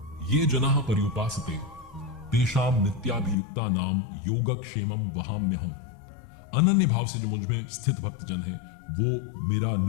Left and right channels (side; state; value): right; drops out; at 3.4 s